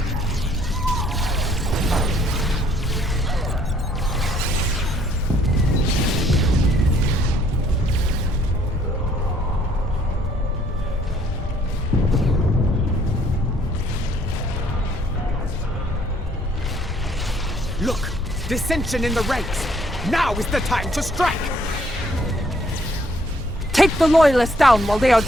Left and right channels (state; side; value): normal; both; correlation 0.64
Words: Look! Dissension in the ranks! Now is the time to strike! Take the Loyalists down while they are